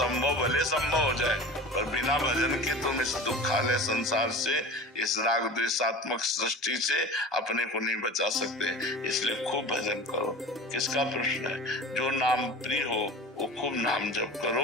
भले संभव हो जाए, पर बिना भजन के तुम इस दुखालय संसार से, इस राग द्वेषात्मक सृष्टि से अपने को नहीं बचा सकते। इसलिए खूब भजन करो। किसका प्रश्न है? जो नाम प्रिय हो वो खूब नाम जप करो,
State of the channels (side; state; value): both; normal; correlation 0.36